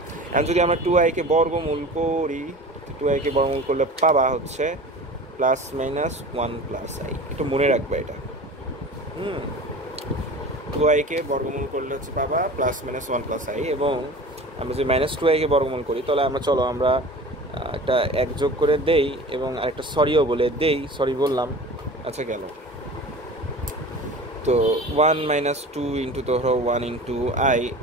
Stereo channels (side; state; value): both; normal; correlation 0.37